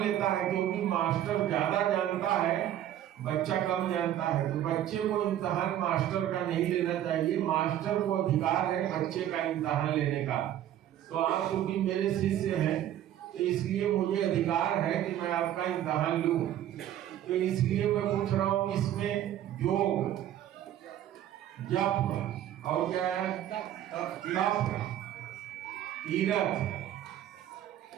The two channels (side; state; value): left; quieter; 11.7 dB